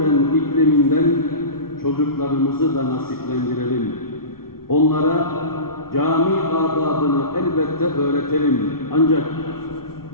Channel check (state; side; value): late; right; 0.94 ms